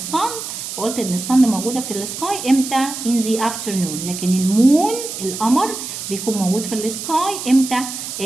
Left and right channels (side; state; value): right; noise; hiss, 7 dB below the sound